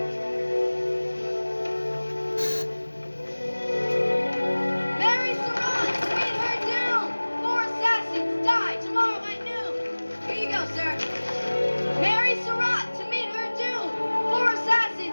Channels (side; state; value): both; inverted; correlation -1.00